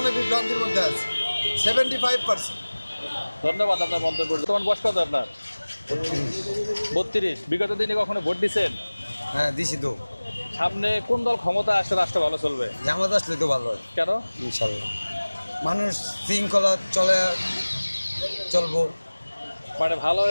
বিভ্রান্তির মধ্যে আছে, 75%। ধন্যবাদ আপনার মন্তব্য। বর্তমান বয়স কত আপনার? 32। বিগত দিনে কখনো ভোট দিচ্ছেন? হ্যাঁ, দিছি তো। সামনে কোন দল ক্ষমতা আসলে রাষ্ট্র ভালো চলবে? জামাত আসলে তো ভালো হয়। কেন? ইনশাল্লাহ মানুষ শৃঙ্খলা চলবো, মানে ভালো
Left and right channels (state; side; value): inverted; both; correlation -1.00